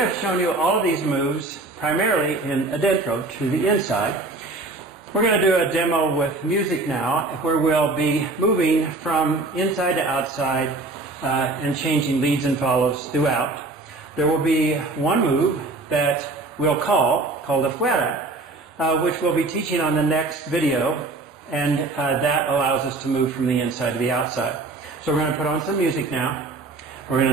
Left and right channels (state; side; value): quieter; left; 3.2 dB